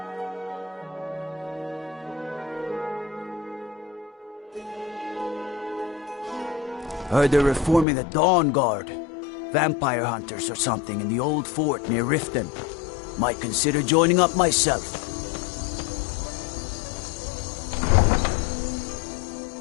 Heard they're reforming the Dawn Guard. Vampire hunters or something in the old fort near Riften. Might consider joining up myself.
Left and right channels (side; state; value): right; drops out; at 7.9 s